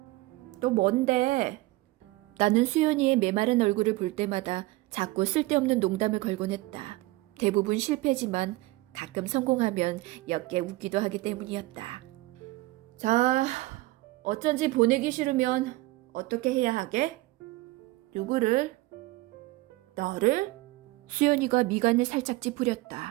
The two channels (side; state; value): left; quieter; 20.1 dB